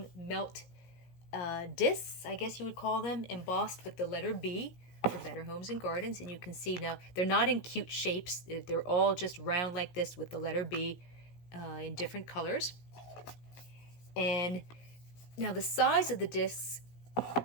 melt discs, I guess you would call them, embossed with the letter B for Better Homes and Gardens. And you can see now they're not in cute shapes, they're all just round like this with the letter B in different colors. And now the size of the discs,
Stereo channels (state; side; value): late; right; 17 ms